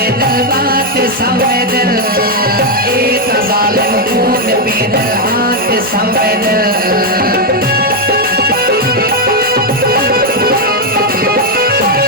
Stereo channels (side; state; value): both; normal; correlation 0.01